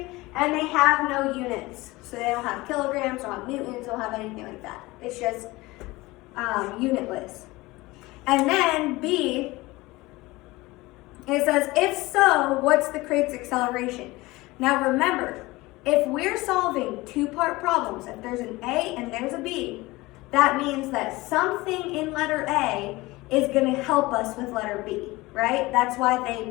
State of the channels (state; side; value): quieter; right; 20.8 dB